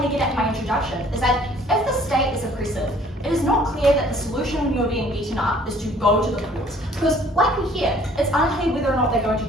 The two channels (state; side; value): normal; both; correlation 0.56